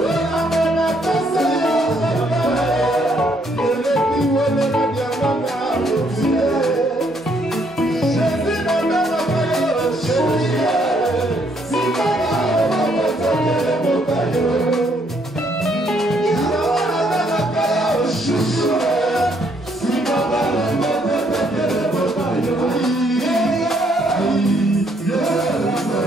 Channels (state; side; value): normal; both; correlation 0.70